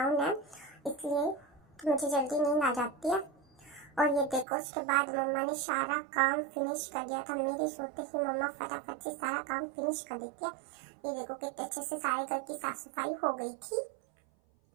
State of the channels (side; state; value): left; drops out; at 4.5 s